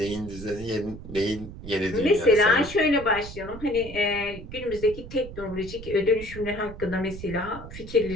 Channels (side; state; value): right; noise; rumble, 12 dB below the sound